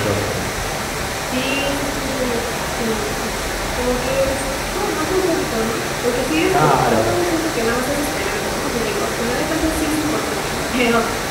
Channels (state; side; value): identical; both; correlation 1.00